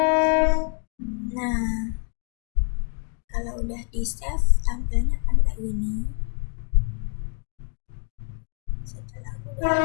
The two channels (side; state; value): right; quieter; 37.8 dB